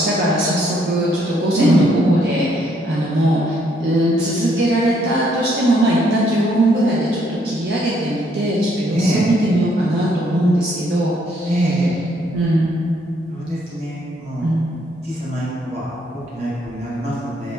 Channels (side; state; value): both; normal; correlation 0.69